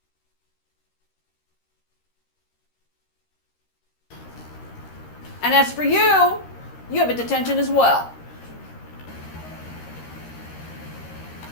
And as for you, you have a detention as well.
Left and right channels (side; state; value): right; late; 13 ms